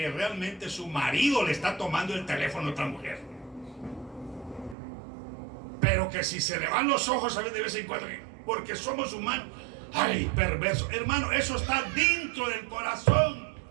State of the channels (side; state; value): left; drops out; at 4.8 s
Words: realmente su marido le está tomando el teléfono a otra mujer. Pero que si se le van los ojos a ver de vez en cuando, porque somos humanos. Ay, perverso. Hermano, eso está dentro del corazón.